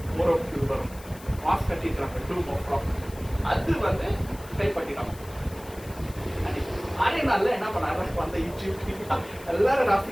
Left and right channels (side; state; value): left; noise; hiss, 20 dB below the sound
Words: மோரோக்கு வரும் மாஸ் கட்டிக்கிறாங்க, டூம் ஆஃப் ராக். அது வந்து கைப்பற்றிட்டாங்க. 6 நாள்ல என்ன பண்ணாங்க? அந்த ஈஜிப்ட் எல்லாரும் ராசி